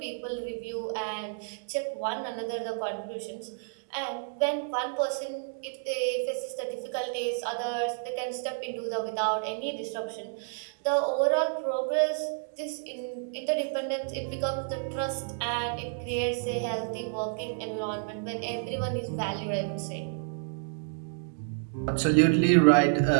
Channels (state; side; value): silent; left; digital silence